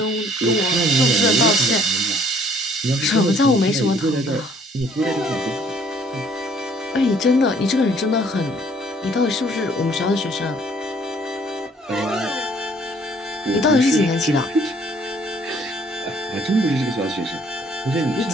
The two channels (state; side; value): normal; both; correlation 0.60